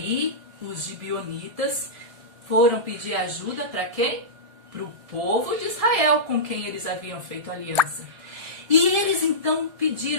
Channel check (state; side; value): late; left; 1.7 ms